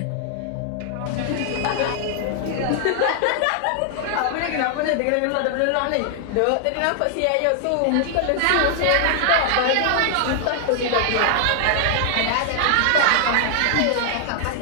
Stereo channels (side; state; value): both; different; correlation 0.00